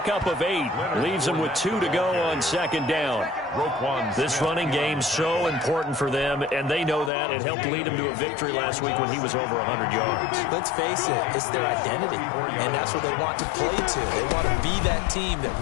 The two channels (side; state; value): right; drops out; at 7.1 s